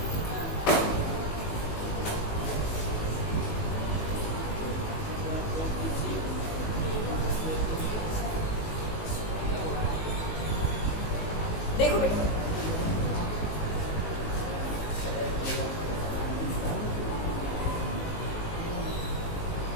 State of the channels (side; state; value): right; late; 19 ms